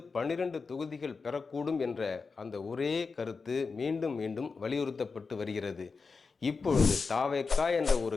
12 தொகுதிகள் பெறக்கூடும் என்ற அந்த ஒரே கருத்து மீண்டும் மீண்டும் வலியுறுத்தப்பட்டு வருகிறது. இப்பொழுது தாவேகா என்ற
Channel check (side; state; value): right; quieter; 4.7 dB